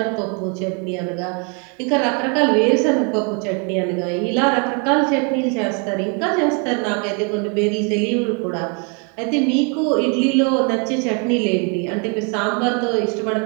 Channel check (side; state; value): left; quieter; 35.4 dB